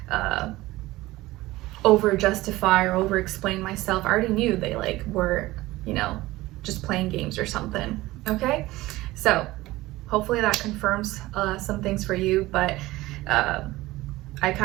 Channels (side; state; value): left; quieter; 18.3 dB